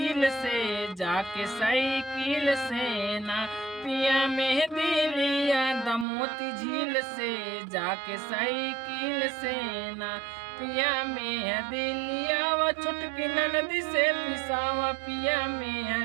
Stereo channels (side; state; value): left; drops out; at 6.1 s